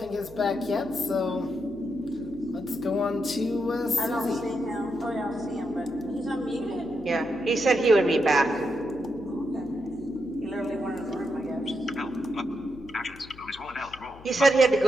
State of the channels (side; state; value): left; noise; hum, 20 dB below the sound